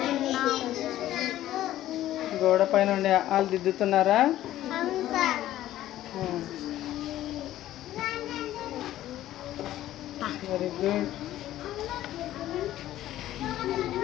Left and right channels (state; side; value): quieter; right; 13.7 dB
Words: గోడ పైన ఉండి వాళ్ళు దిద్దుతున్నారా? Very good.